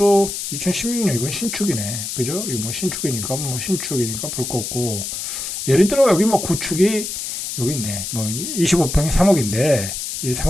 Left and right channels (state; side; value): noise; left; hiss, 5 dB below the sound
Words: 2016년 이건 신축이네, 그죠? 이거 뭐 신축이니까 볼 거 없고 예를 들어 여기 뭐 구축이 여기 있네, 뭐 25평이 3억인데 이